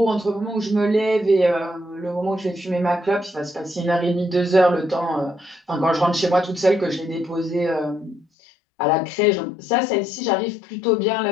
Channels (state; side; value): drops out; right; at 8.2 s